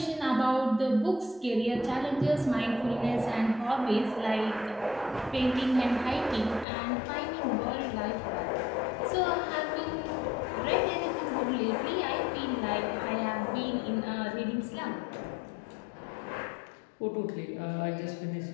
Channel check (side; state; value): right; drops out; at 6.7 s